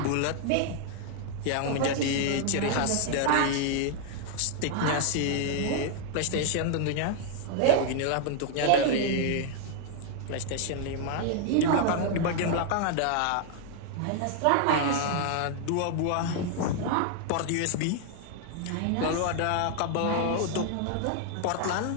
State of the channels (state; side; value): different; both; correlation 0.00